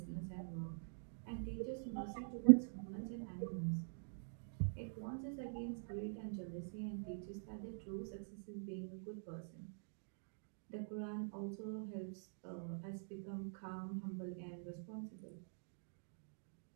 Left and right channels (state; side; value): silent; left; digital silence